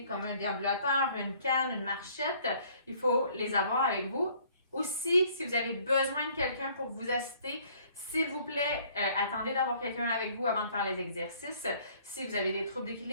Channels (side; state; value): both; inverted; correlation -0.59